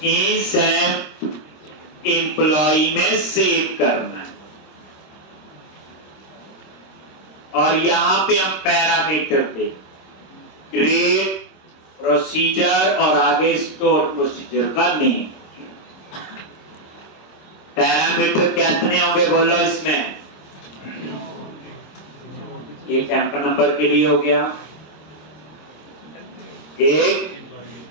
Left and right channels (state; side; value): late; right; 26 ms